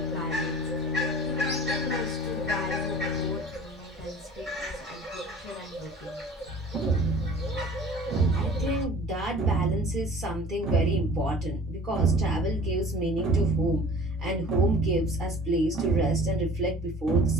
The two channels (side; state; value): both; normal; correlation 0.46